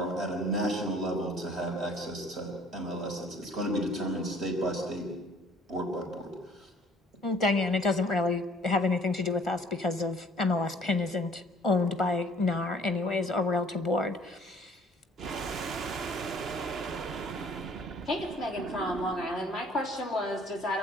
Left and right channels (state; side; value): normal; both; correlation 0.56